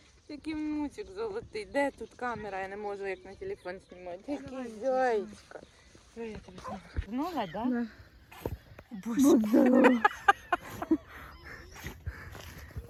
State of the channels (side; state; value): both; identical; correlation 1.00